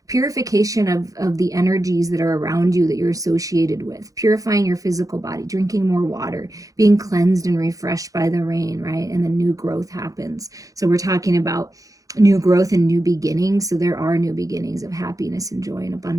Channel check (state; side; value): late; left; 0.17 ms